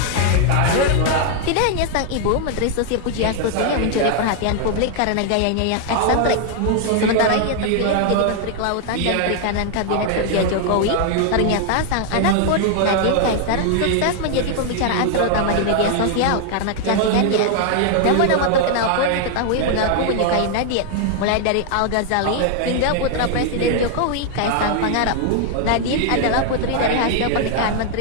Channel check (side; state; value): both; different; correlation 0.00